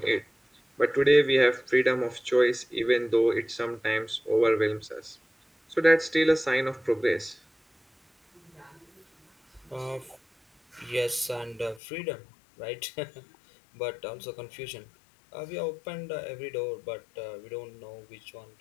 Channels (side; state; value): right; drops out; at 11.8 s